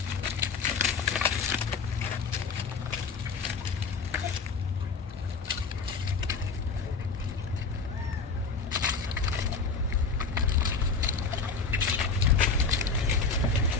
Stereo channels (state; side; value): quieter; right; 4.7 dB